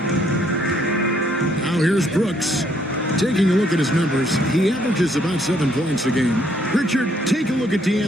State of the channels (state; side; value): normal; both; correlation 0.69